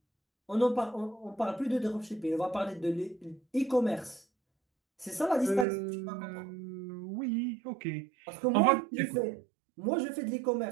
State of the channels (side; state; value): left; drops out; at 5.7 s